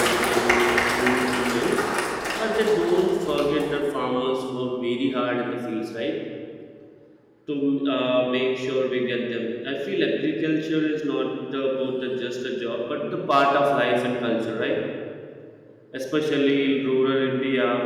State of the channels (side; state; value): both; identical; correlation 1.00